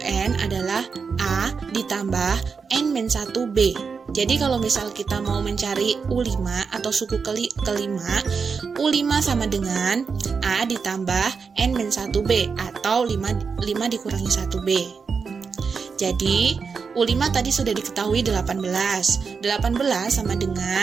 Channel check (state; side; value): quieter; left; 5.5 dB